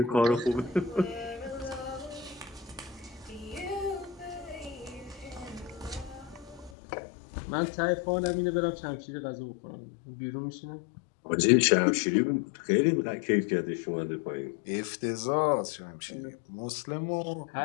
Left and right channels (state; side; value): drops out; right; at 6.7 s